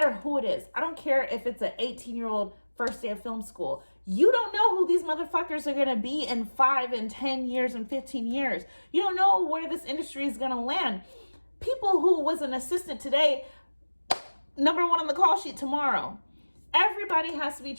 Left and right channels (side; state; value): both; inverted; correlation -1.00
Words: who it is. I don't care if it's an 18-year-old first day of film school. You don't know who these motherfuckers are going to be in 5 and 10 years and 15 years. You don't know where this industry is going to land. People who was an assistant today, number 1 on the call sheet tomorrow. Everybody has to be